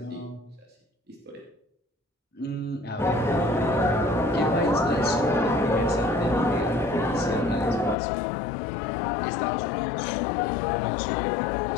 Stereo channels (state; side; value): drops out; right; at 8.0 s